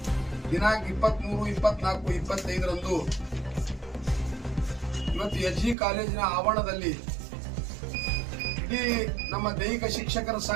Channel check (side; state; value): left; drops out; at 5.8 s